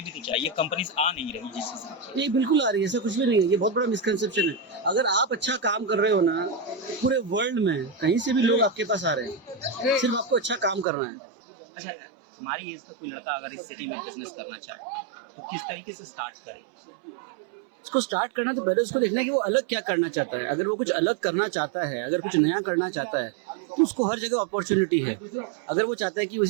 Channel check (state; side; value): drops out; left; at 10.9 s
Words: भी तो चाहिए, कंपनीज आ नहीं रही जिससे। ये बिल्कुल आ रही है, ऐसा कुछ भी नहीं है। ये बहुत बड़ा मिसकंसेप्शन है। अगर आप अच्छा काम कर रहे हो ना, पूरे वर्ल्ड में कहीं से भी लोग आपके पास आ रहे हैं, सिर्फ आपको अच्छा काम करना है। अच्छा, हमारी एज का कोई लड़का अगर इस सिटी में बिजनेस करना चाहे तो किस तरीके से स्टार्ट करे? उसको स्टार्ट करना तो पहले उसको देखना है कि वो अलग क्या करना चाहता है। अगर वो कुछ अलग करना चाहता है, अगर कुछ नया करना चाहता है, तो उसको हर जगह अपॉर्चुनिटी है। अगर वो चाहता है कि